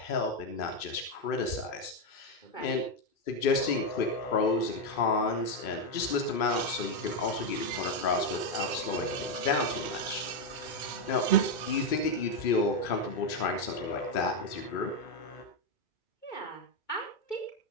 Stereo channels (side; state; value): right; late; 2.5 ms